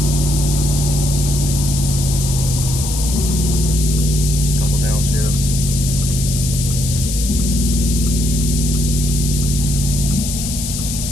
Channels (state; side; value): noise; left; hiss, 5 dB below the sound